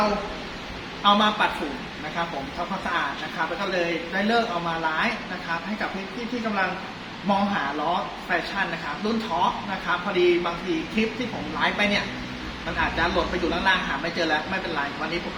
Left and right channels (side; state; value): both; identical; correlation 1.00